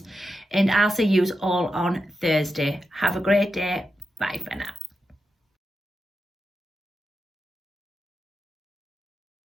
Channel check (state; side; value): normal; both; correlation 0.89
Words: And I'll see you all on Thursday. Have a great day. Bye for now.